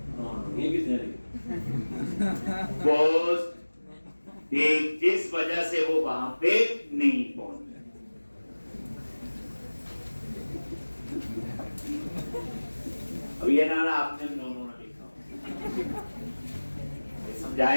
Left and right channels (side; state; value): both; inverted; correlation -1.00